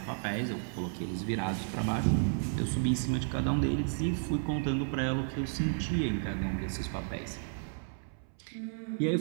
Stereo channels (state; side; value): silent; left; 56 dB below the other